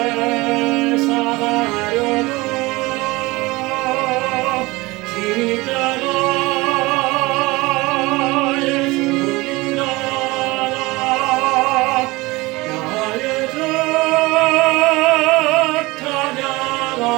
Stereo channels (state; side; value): quieter; left; 22.0 dB